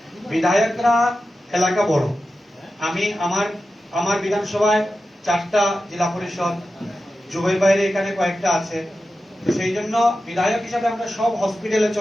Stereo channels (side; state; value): both; normal; correlation 0.92